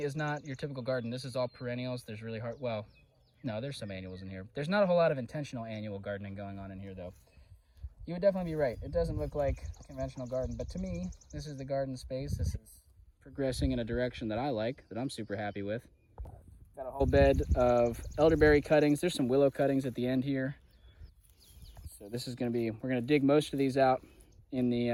is not your typical garden. This is all perennials. There's really hard, well, no, there's some annuals in here. There's not a whole lot of intentional annual gardening going on in here, though. You would definitely be right. It doesn't look like a conventional garden, but to me, this is the garden space. This is progressing in a direction that I like, that I'm super happy with. Got a whole bed of elderberry cuttings. There's some willow cuttings at the end here. So this is going to be, we're going to dig most of these out in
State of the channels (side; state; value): both; identical; correlation 1.00